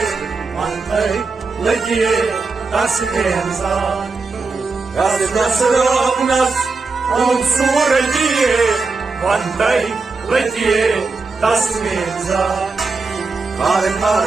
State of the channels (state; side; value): quieter; left; 4.2 dB